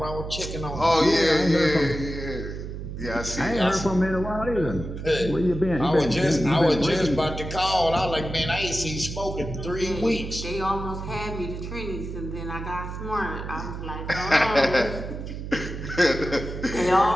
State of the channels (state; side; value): noise; right; hum, 8 dB below the sound